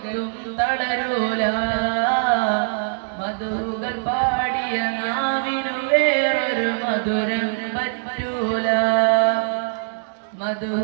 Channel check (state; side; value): silent; left; digital silence